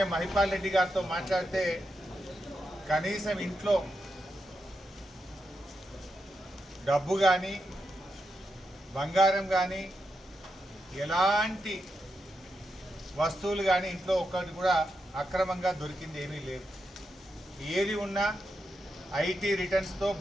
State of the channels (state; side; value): normal; both; correlation 0.85